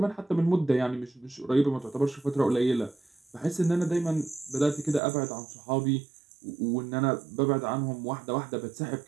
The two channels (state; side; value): drops out; left; at 5.0 s